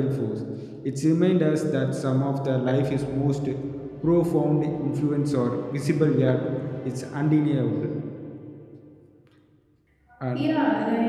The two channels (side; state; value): both; identical; correlation 1.00